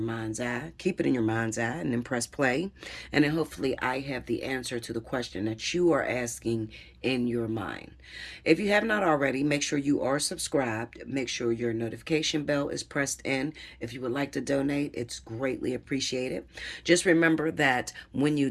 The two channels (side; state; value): both; identical; correlation 1.00